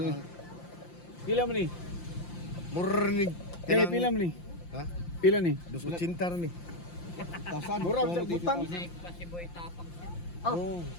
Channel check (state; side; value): late; right; 5.8 ms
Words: eh. Pila mo ni? Murnig. Eh, pila mo ni? Ha? Pila ni? 280 ni. Tasan. Mura sa butang. Oh.